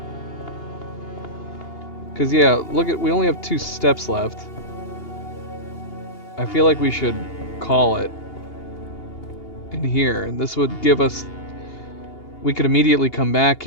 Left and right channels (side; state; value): right; late; 2.8 ms